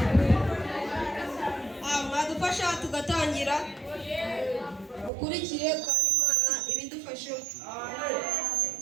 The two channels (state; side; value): drops out; left; at 5.1 s